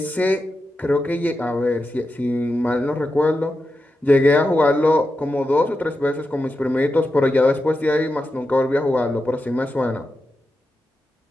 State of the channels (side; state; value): both; normal; correlation 0.89